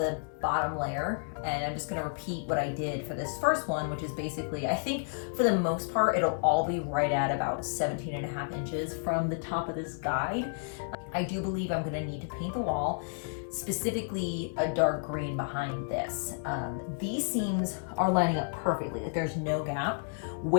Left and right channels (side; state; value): right; silent; digital silence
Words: bottom layer, and I'm just gonna repeat what I did for this first one, which is basically, I think for the most part, it'll all be right at about 17.5 inches from the top of this guide. I do believe I'm gonna need to paint the wall, specifically a dark green behind this. These seams are lining up perfectly, like there's no gap.